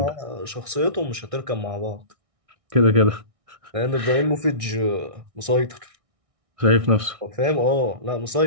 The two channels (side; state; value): left; late; 1.6 ms